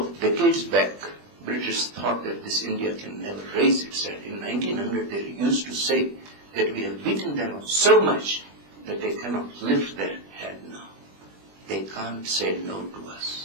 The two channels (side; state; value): left; late; 20 ms